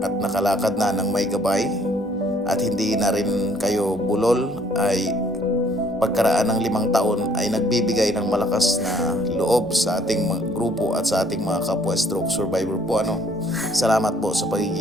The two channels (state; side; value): normal; both; correlation 0.62